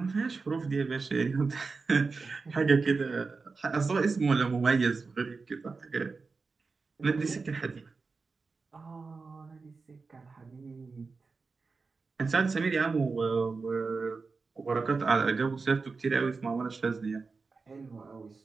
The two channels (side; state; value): left; quieter; 4.4 dB